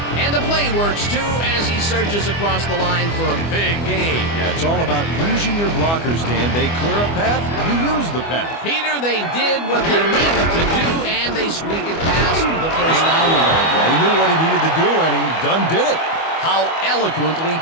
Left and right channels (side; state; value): right; late; 25 ms